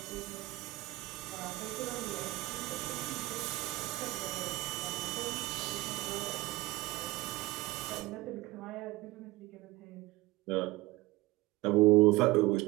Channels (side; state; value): left; quieter; 20.5 dB